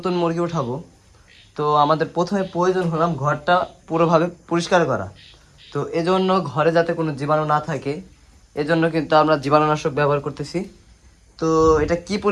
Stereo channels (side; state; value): both; identical; correlation 1.00